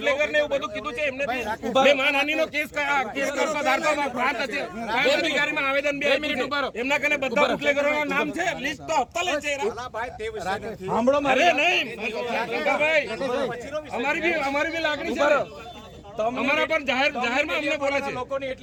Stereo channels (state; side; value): identical; both; correlation 1.00